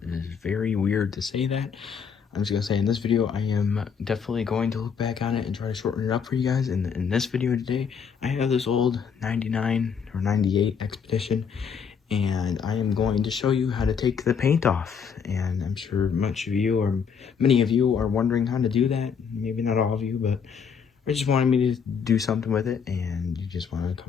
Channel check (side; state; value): right; quieter; 6.7 dB